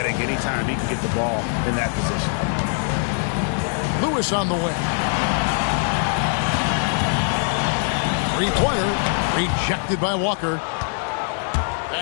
anytime he can get the ball in that position. Lewis on the way. 3-pointer rejected by Walker.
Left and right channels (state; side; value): silent; right; 56 dB below the other